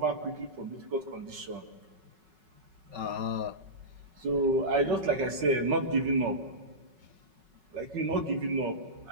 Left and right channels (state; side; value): late; left; 5.3 ms